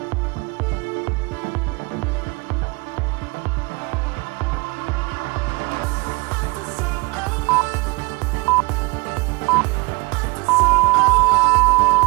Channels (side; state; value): left; quieter; 26.9 dB